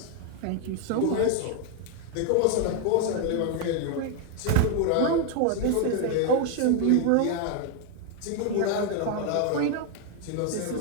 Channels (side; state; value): both; different; correlation 0.01